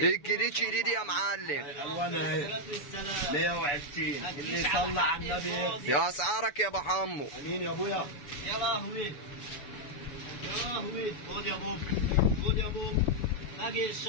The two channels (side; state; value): right; late; 6.9 ms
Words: الجديد شديد يا معلم. الوانها اهي. الصلاه والسلام. 120 اللي يصلى على النبي يكسب. يا اسعارك يا ابو حمو. امين يا ابويا. يا لهوي يا لهوي. خد يا بوب خد يا بوب. باقي